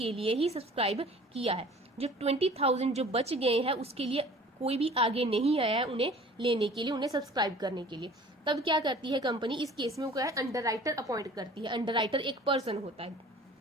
लिए ही सब्सक्राइब किया है। जो 20,000 जो बच गए हैं उसके लिए कोई भी आगे नहीं आया है उन्हें लेने के लिए, उन्हें सब्सक्राइब करने के लिए। तब क्या करती है कंपनी, इस केस में वो क्या है अंडरराइटर अपॉइंट करती है। अंडरराइटर एक पर्सन होता है।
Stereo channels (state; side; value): normal; both; correlation 0.47